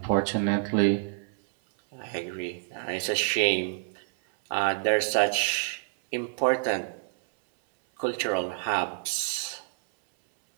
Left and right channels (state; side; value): silent; left; 59 dB below the other